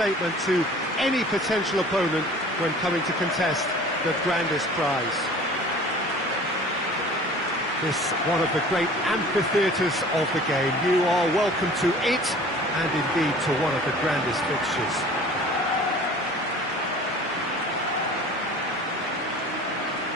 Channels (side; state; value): both; normal; correlation 0.45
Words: to any potential opponent when coming to contest the grandest prize. This one of the great amphitheatres of the game. You are welcome to it, and indeed to one of the grandest fixtures.